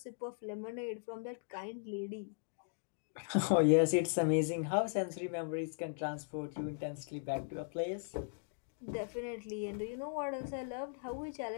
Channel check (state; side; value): silent; right; digital silence